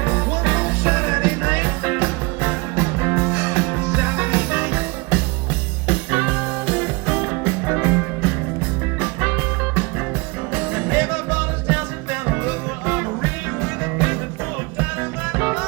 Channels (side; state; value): left; quieter; 27.0 dB